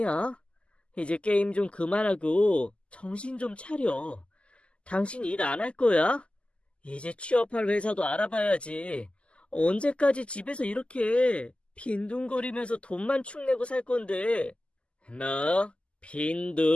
이제 게임 좀 그만하고 정신 좀 차려. 당신 일 안 할 거야? 이제 취업할 회사도 알아봐야지. 언제까지 집에서 이렇게 빈둥거리면서 돈만 축내고 살 건데. 뭐?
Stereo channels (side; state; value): right; late; 0.054 ms